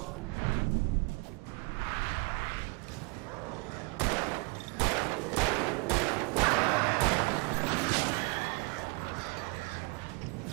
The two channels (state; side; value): quieter; left; 30.7 dB